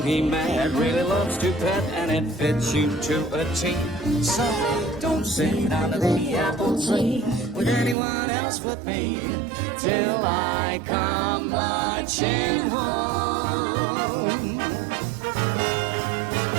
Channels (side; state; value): left; drops out; at 8.0 s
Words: he met really loves to pet and it fits you to a T. So don't sit under the apple tree with anyone else but me till I come marching home.